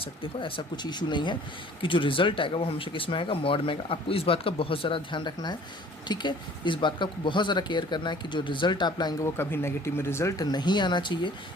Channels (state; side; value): normal; both; correlation 0.51